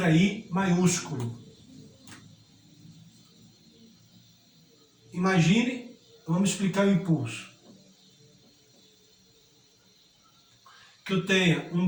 I maiúsculo. Imagine, vamos explicar o impulso. Que eu tenha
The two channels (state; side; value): identical; both; correlation 1.00